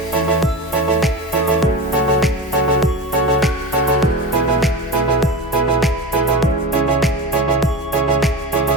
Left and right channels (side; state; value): both; normal; correlation 0.27